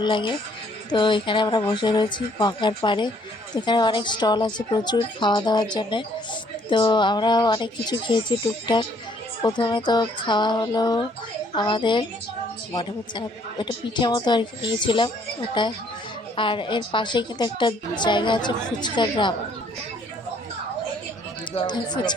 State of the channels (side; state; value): both; normal; correlation 0.63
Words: লাগে। তো এখানে আমরা বসে রয়েছি গঙ্গার পাড়ে। তো এখানে অনেক স্টল আছে প্রচুর খাওয়া দাওয়ার জন্যে। তো আমরা অনেক কিছু খেয়েছি টুকটাক। প্রথমে তো খাওয়া হলো আমাদের, মনে হচ্ছে না, এটা পিঠে মতো আর কি নিয়েছিলাম ওটা। আর এর পাশে কিন্তু একটা জায়গা আছে ফুচকা গ্রাম।